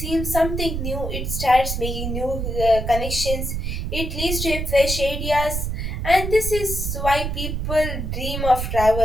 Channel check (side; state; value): right; noise; rumble, 3 dB below the sound